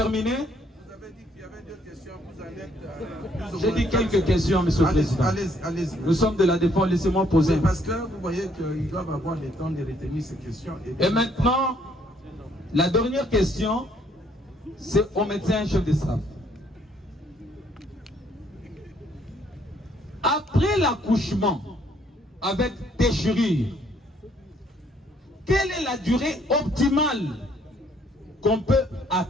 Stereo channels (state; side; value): normal; both; correlation 0.66